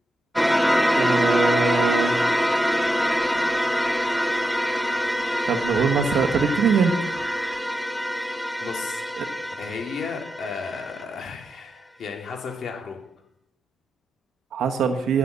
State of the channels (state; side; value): normal; both; correlation 0.86